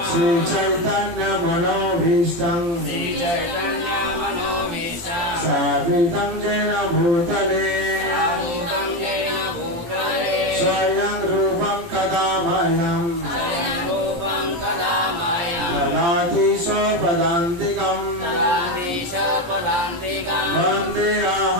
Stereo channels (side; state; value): left; late; 17 ms